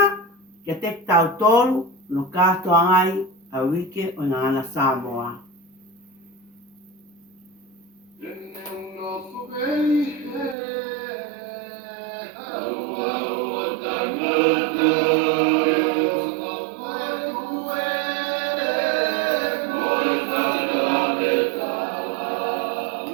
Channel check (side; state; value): left; drops out; at 10.6 s